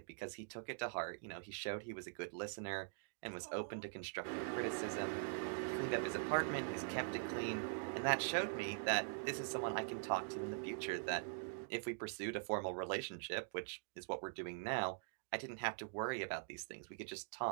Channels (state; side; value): silent; left; digital silence